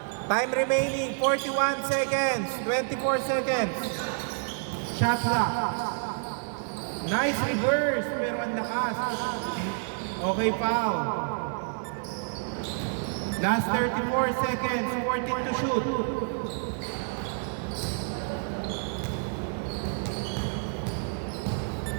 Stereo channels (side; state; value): left; silent; 59 dB below the other